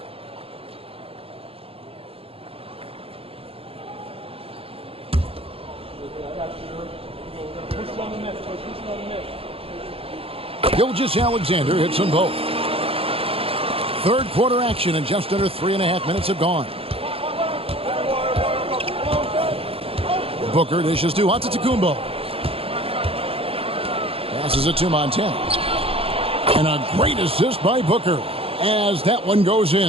Gilgeous-Alexander hits them both. Third quarter action and just under 3.5 minutes have gone. Booker dishes to Antetokounmpo. Passes it to Montana. And a great assist by Booker as that one goes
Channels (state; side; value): late; left; 0.27 ms